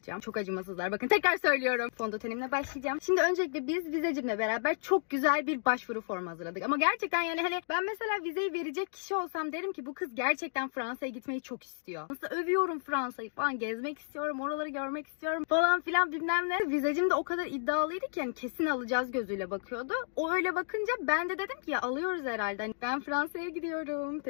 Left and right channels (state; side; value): silent; right; digital silence